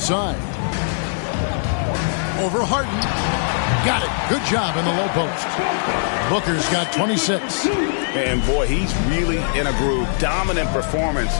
Over Harden. Got it. Good job in the low post. Booker's got 26. And boy, he's really in a groove. Dominant performance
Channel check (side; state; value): right; silent; digital silence